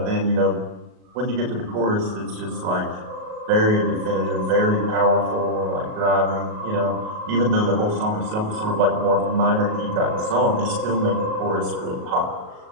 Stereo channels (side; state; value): left; late; 37 ms